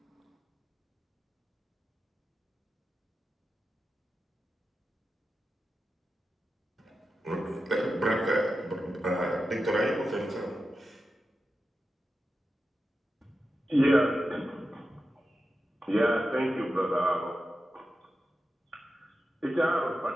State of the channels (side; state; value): both; normal; correlation 0.91